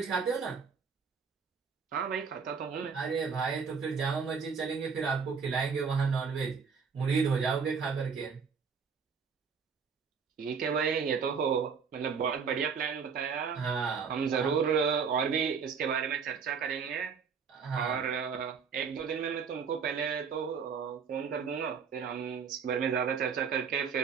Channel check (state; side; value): quieter; left; 6.0 dB